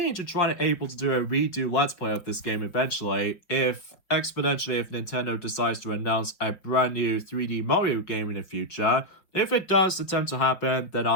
to try and able to do a redo Let's Play of this game eventually, if Nintendo decides to announce a brand new 3D Mario game in the future. If it does attempt to happen, then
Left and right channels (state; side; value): late; right; 5.0 ms